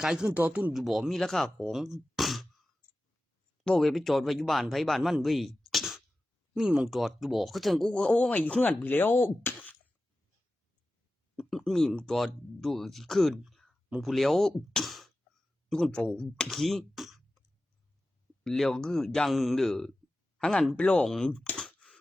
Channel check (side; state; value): both; normal; correlation 0.94